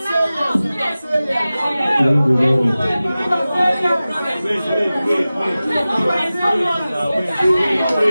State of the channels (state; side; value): inverted; both; correlation -0.96